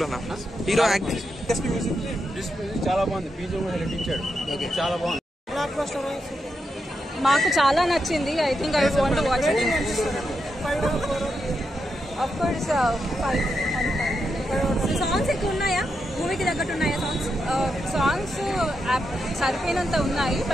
హీరో యాక్టింగ్ చాలా బాగుంది. బీజం కూడా నటించాడు. చాలా బాగుంది. మాకు చాలా నచ్చింది. I think I want to watch it. Of course 5. Songs ఎక్కువ ఉన్నాయా? మూవీకి తగ్గట్టు ఉన్నాయా సాంగ్స్? సాంగ్స్ సరిపోయినంత ఉన్నాయి,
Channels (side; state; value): both; normal; correlation 0.85